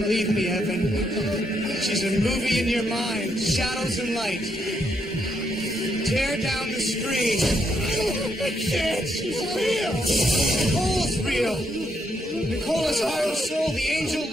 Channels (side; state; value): both; normal; correlation 0.77